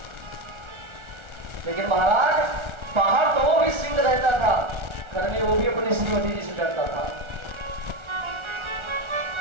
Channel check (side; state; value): left; late; 1.4 ms